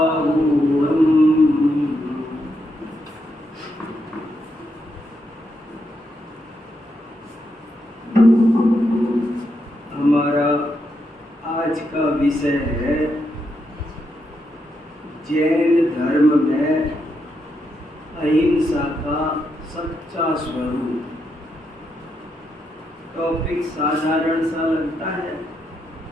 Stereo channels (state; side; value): normal; both; correlation 0.81